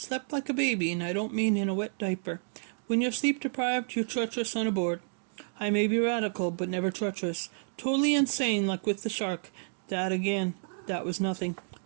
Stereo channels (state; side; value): silent; left; digital silence